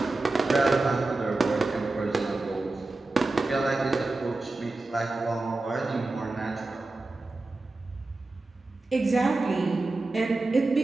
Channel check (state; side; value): quieter; left; 3.2 dB